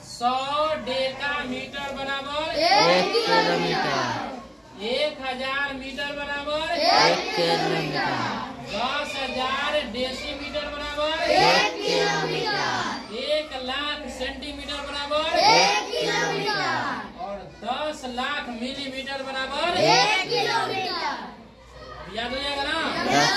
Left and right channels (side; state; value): both; identical; correlation 1.00